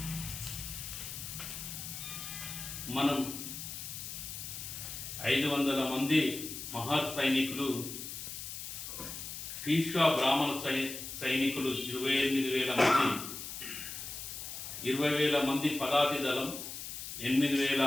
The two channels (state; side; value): noise; left; hiss, 8 dB below the sound